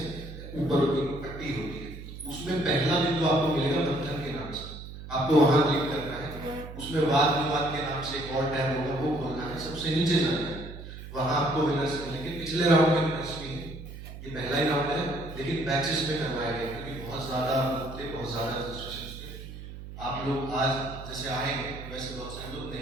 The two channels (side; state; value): right; noise; hum, 12 dB below the sound